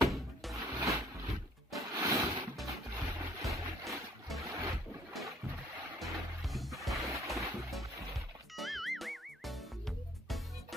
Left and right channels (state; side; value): normal; both; correlation 0.59